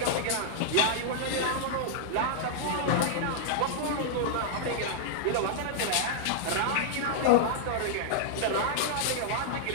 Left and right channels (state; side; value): different; both; correlation -0.01